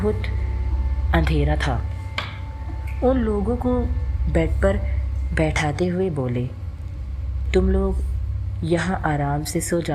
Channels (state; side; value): identical; both; correlation 1.00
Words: अंधेरा था। उन लोगों को बेड पर बैठाते हुए बोले, तुम लोग यहाँ आराम से सो